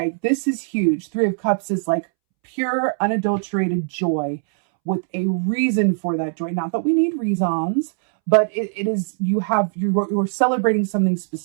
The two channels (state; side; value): silent; left; 65 dB below the other